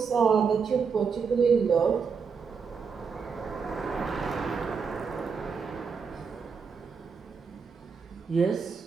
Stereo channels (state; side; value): quieter; left; 5.7 dB